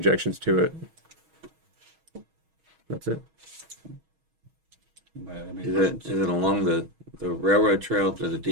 to it. That's it. Is it along the railroad trail to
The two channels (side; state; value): left; late; 6.3 ms